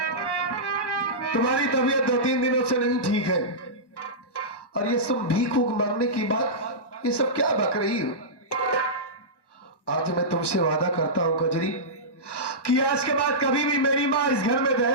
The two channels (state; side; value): late; right; 1.1 ms